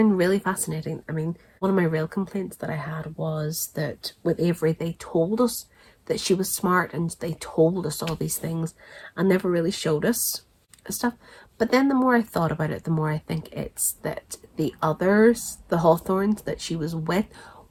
really fascinating. I mean, one of my real complaints that I had was that with Avery, they told us that she was smart and they told us all these things and never really showed us stuff. But then the more I thought about it, the more I think it's that the others, the Hawthornes that she was with,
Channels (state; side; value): identical; both; correlation 1.00